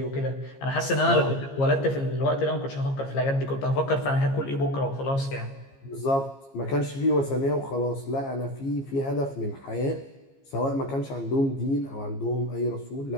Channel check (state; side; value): late; right; 15 ms